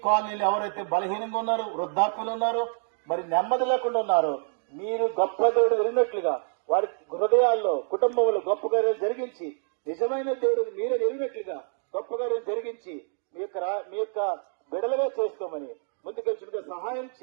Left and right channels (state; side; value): silent; left; digital silence